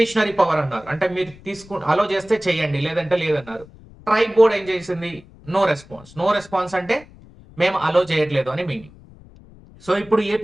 పవర్ అన్నారు. అంటే మీరు అలో చేస్తే చేయండి, లేదంటే లేదన్నారు. ట్రైబ్ బోర్డ్ ఏం చేసింది? No response. నో రెస్పాన్స్ అంటే మేము అలో చేయట్లేదు అని మీనింగ్. సో ఇప్పుడు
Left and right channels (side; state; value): left; noise; rumble, 23 dB below the sound